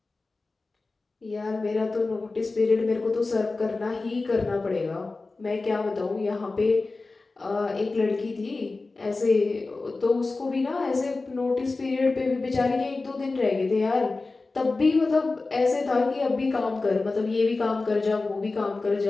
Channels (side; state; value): right; quieter; 3.6 dB